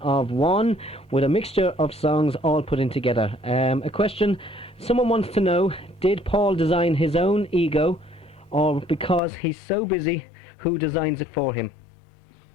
One, with a mixture of songs all put in together. A question someone wants to know: did Paul design his own ego, or because he's so busy, who designs it for him?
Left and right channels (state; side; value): drops out; right; at 9.2 s